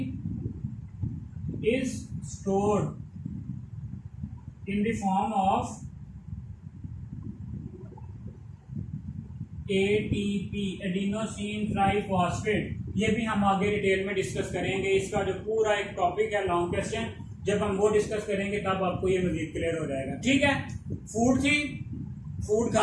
is stored in the form of ATP, adenosine triphosphate. ये भी हम आगे डिटेल में डिस्कस करेंगे, इसका जो पूरा एक टॉपिक है लॉन्ग क्वेश्चन, जब हम वो डिस्कस करेंगे तब आपको ये मजीद क्लियर हो जाएगा। ठीक है, फूड थी, फूड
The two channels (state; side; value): identical; both; correlation 1.00